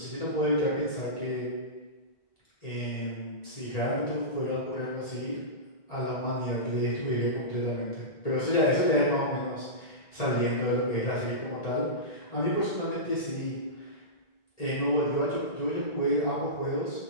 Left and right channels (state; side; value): late; right; 1.8 ms